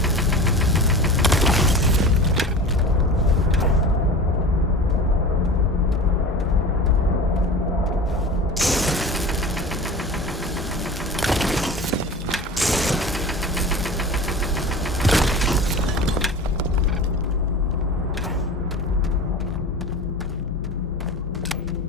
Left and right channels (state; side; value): normal; both; correlation 0.34